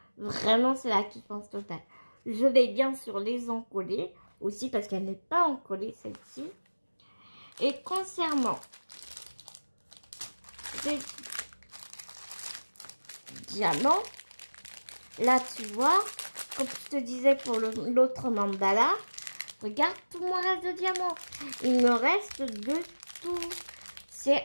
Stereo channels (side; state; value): both; inverted; correlation -1.00